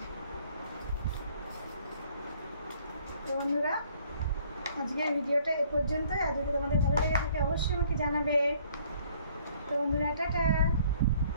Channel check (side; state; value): both; inverted; correlation -0.60